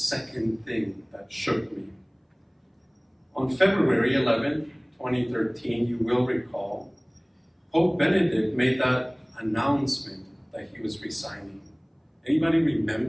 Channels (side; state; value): both; identical; correlation 1.00